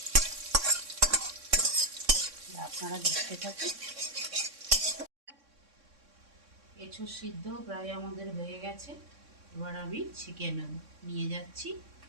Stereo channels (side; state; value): left; late; 3.6 ms